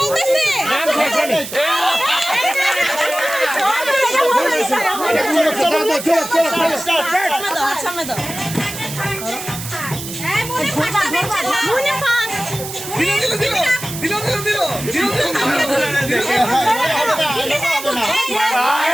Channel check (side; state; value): right; noise; hiss, 9 dB below the sound